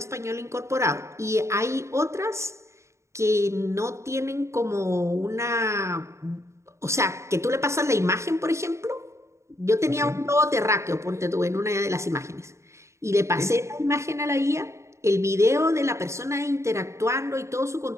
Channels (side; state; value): left; late; 0.14 ms